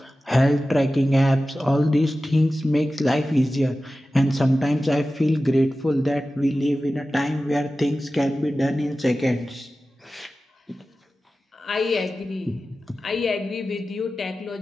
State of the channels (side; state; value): both; normal; correlation 0.95